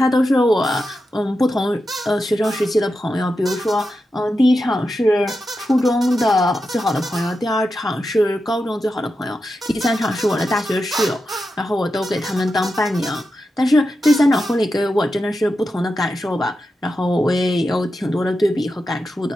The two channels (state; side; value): normal; both; correlation 0.89